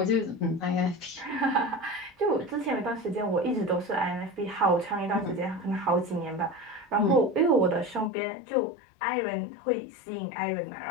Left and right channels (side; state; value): right; drops out; at 8.1 s